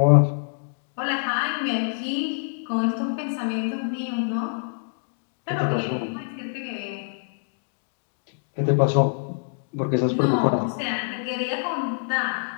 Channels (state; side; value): silent; right; digital silence